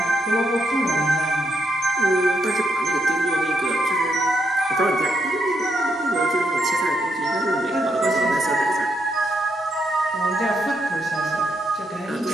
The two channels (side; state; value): both; normal; correlation 0.79